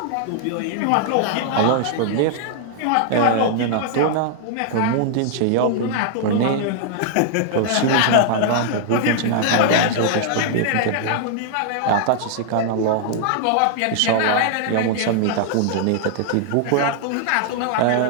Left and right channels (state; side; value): different; both; correlation -0.01